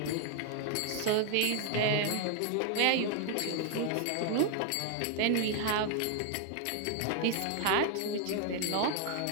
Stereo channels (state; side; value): different; both; correlation 0.00